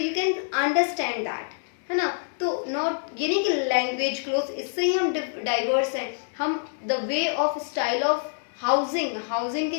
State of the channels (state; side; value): silent; right; digital silence